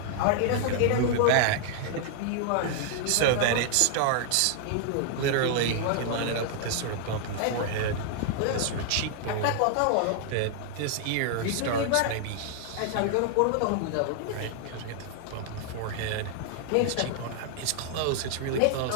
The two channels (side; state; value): both; different; correlation 0.00